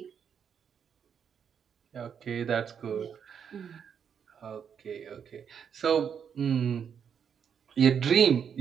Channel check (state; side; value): quieter; left; 7.5 dB